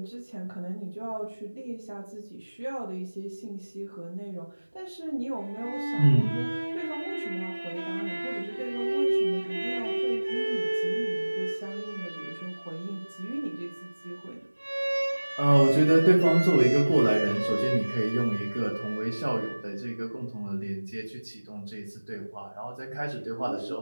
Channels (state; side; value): inverted; both; correlation -1.00